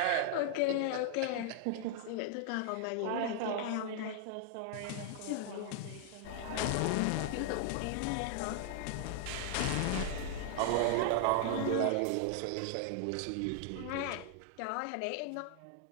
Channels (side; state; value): both; different; correlation 0.00